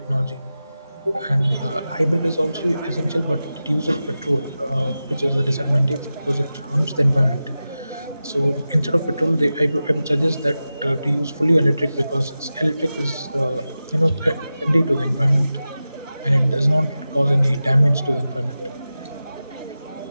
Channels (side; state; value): both; inverted; correlation -0.93